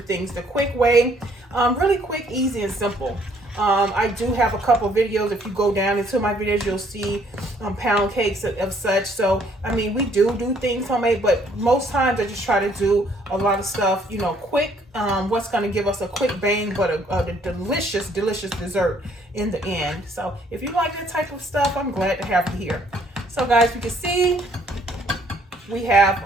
the quick way. Really quick, easy, and simple. I do have a couple videos. If you go down into my videos, you'll see pound cakes of such. So, I mean, we do things homemade, but most times I just try to do a lot of stuff, you know, quick. What's going to give us a quick bang, but a delicious, delicious dessert in the end. So, if you like that type of stuff, I'm glad to have you here. So, guys, you can see we have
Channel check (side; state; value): both; normal; correlation 0.64